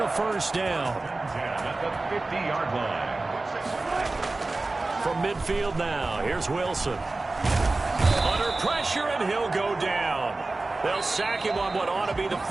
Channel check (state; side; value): quieter; left; 3.2 dB